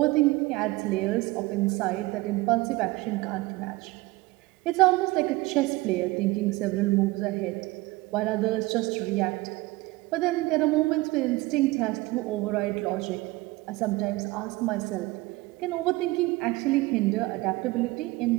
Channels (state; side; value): quieter; left; 20.7 dB